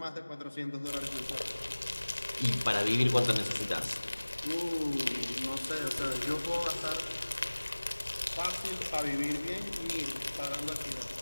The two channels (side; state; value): both; inverted; correlation -1.00